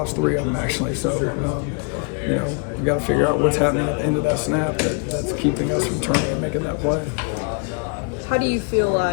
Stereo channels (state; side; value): quieter; right; 37.4 dB